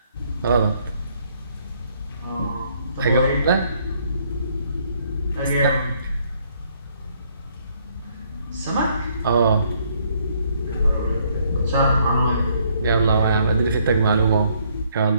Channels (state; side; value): inverted; both; correlation -0.67